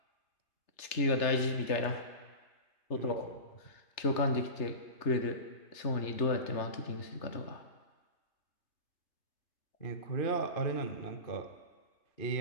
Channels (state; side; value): late; right; 3.3 ms